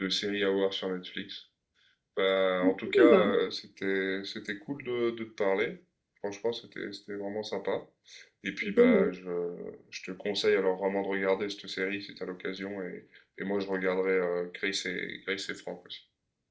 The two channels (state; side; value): identical; both; correlation 1.00